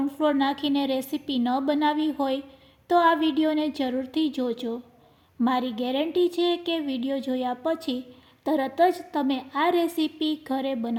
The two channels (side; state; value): both; identical; correlation 1.00